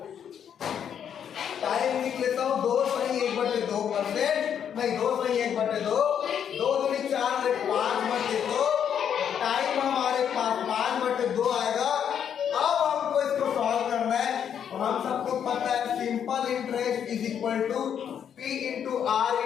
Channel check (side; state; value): right; quieter; 8.6 dB